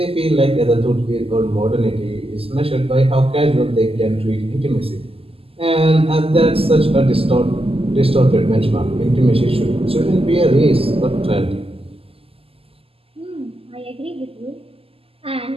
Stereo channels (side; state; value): left; late; 0.28 ms